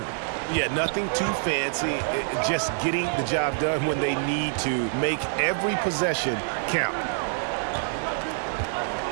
Yeah, nothing too fancy. Just getting the job done when they need to. Make every possession count.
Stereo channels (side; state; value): left; silent; digital silence